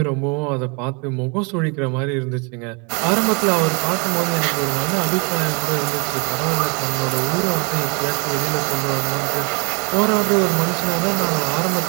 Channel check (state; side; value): quieter; left; 32.8 dB